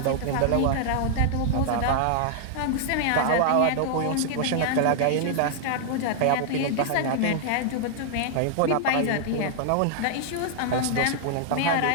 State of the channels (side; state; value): both; different; correlation 0.00